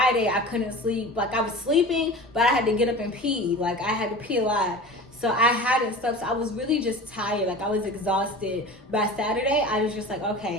I couldn't sleep. Like, I was sleeping, but I had to get up and pee. Like, I had to pee a lot. So I hadn't slept. So I was really just tired. Like, I was exhausted. By Saturday, I was just like,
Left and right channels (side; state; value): both; normal; correlation 0.35